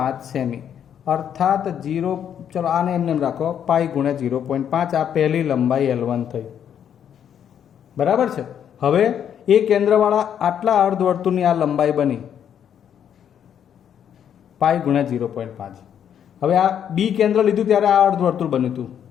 સેમી. અર્થાત 0, ચલો આને એમને રાખો, પાઈ ગુણ્યા 0.5. આ પહેલી લંબાઈ L1 થઈ. બરાબર છે. હવે એ કેન્દ્રવાળા આટલા અર્ધવર્તુળની આ લંબાઈ બની પાઈ ગુણ્યા 0.5. હવે આ બી કેન્દ્ર લીધું ત્યારે આ અર્ધવર્તુળ બન્યું હતું.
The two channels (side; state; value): right; quieter; 9.0 dB